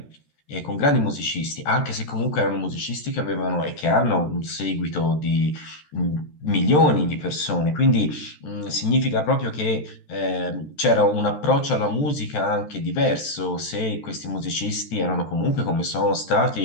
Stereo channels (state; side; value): late; right; 13 ms